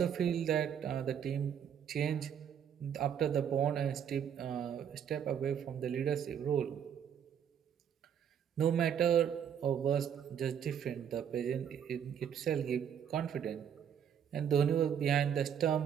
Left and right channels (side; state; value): left; quieter; 8.5 dB